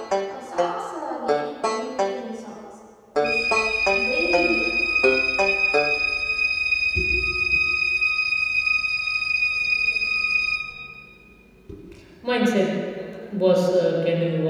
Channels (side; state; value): both; identical; correlation 1.00